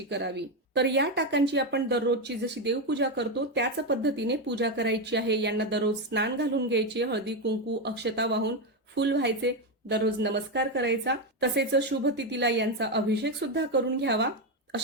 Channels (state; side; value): normal; both; correlation 0.09